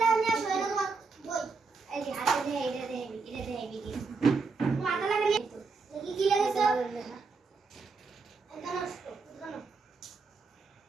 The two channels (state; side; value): quieter; left; 4.5 dB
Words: লাগা নিয়ে আসো এটা তোমার বই এই যে হাতে দিয়ে এটা দিয়ে বিধি তোমার হাতে লাগা নিয়ে তো কি লাগেছে এটা নষ্ট জানো